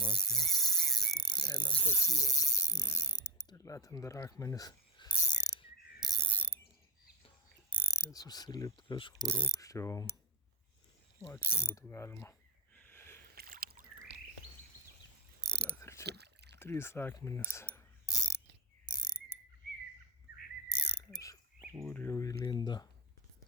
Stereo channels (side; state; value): both; normal; correlation 0.07